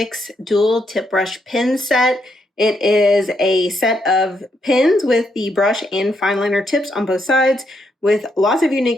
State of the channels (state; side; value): normal; both; correlation 0.77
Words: dual tip brush pen set. It is a set of pins with the brush and fine liner tips on both sides with lots of